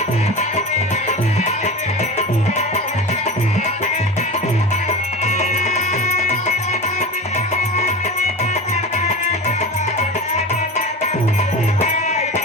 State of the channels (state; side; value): normal; both; correlation 0.29